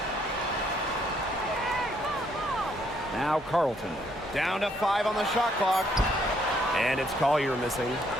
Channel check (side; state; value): both; normal; correlation 0.70